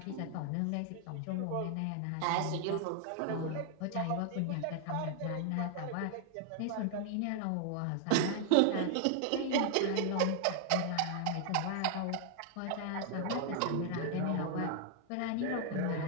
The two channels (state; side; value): different; both; correlation 0.00